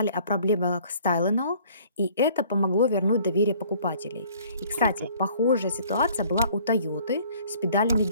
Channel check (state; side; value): inverted; both; correlation -0.56